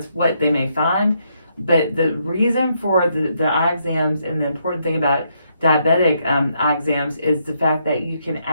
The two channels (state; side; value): inverted; both; correlation -0.76